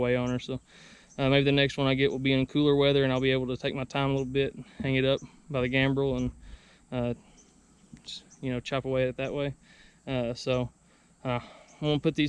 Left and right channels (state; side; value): identical; both; correlation 1.00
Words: on her. So maybe the next one I get will be in cooler weather, and I'll be able to take my time a little bit and hang it up by the gambrel and just, you know, chop away at it that way. So I'm gonna put